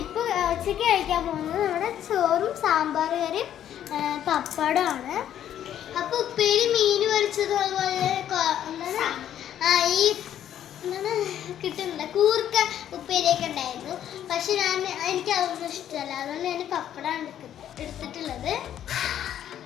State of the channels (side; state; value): right; quieter; 10.6 dB